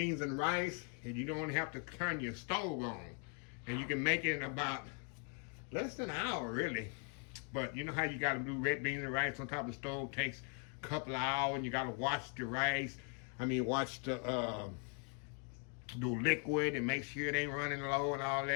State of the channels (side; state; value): right; quieter; 38.0 dB